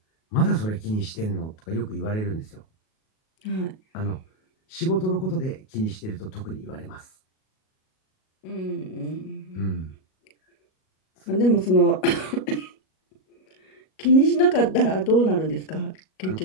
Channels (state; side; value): late; right; 37 ms